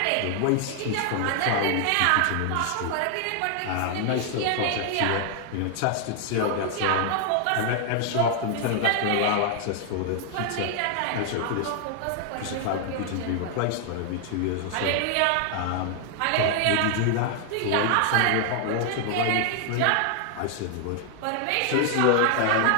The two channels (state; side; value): different; both; correlation 0.00